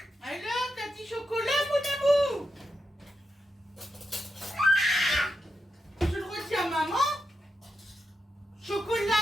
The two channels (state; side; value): normal; both; correlation 0.86